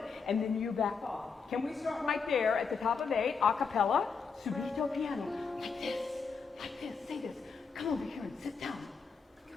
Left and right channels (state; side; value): quieter; right; 5.4 dB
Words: And then you back off. Can we start right there at the top of 8, a cappella, subito piano, like this, say this. Come over here and sit down.